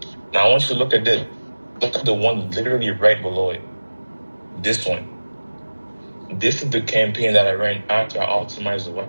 Now I want you to look at this. Look at the one literally right below it. This one. This is the campaign that I ran after I optimized the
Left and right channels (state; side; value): inverted; both; correlation -1.00